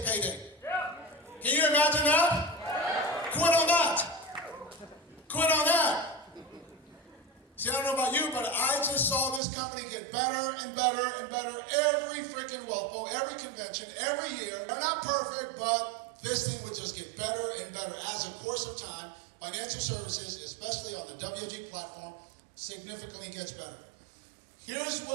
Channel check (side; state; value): left; drops out; at 9.4 s